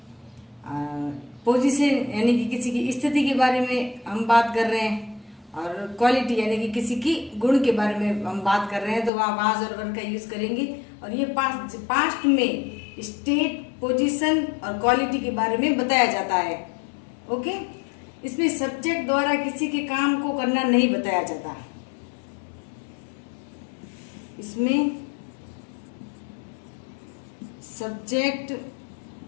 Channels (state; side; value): drops out; right; at 9.1 s